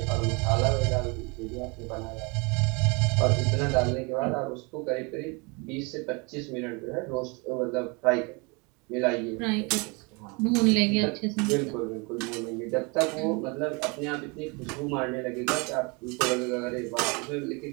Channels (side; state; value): left; quieter; 29.8 dB